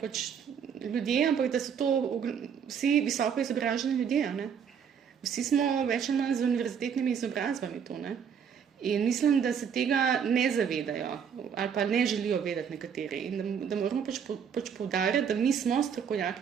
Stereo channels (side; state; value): left; quieter; 7.4 dB